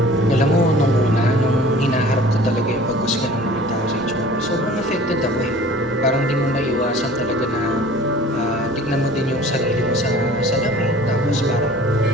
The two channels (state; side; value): normal; both; correlation 0.46